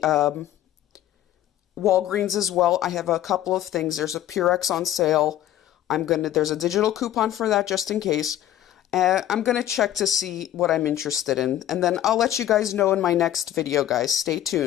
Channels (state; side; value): quieter; right; 12.3 dB